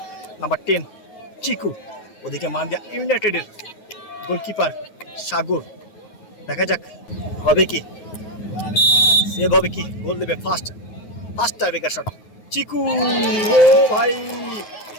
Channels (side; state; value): right; late; 9.4 ms